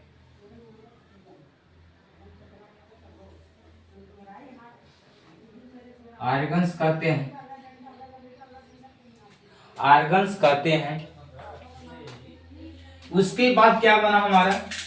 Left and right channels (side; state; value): both; identical; correlation 1.00